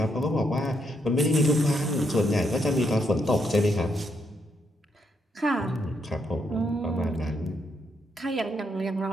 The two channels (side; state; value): both; normal; correlation 0.77